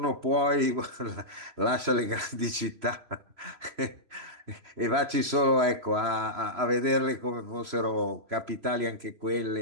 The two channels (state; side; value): late; left; 3.0 ms